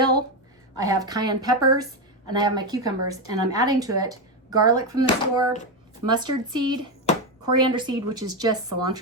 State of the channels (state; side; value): normal; both; correlation 0.10